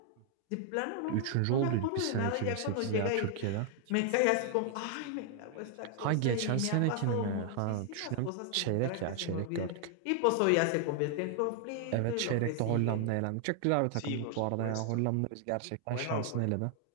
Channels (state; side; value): different; both; correlation 0.00